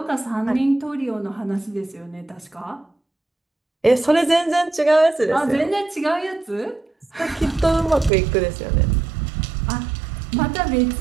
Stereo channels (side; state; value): left; drops out; at 8.1 s